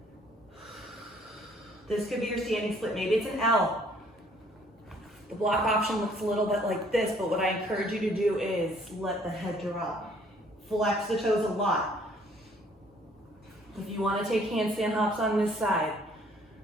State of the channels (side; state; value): both; normal; correlation 0.61